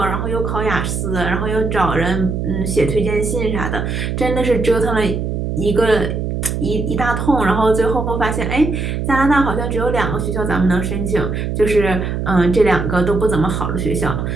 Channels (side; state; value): right; noise; hum, 2 dB below the sound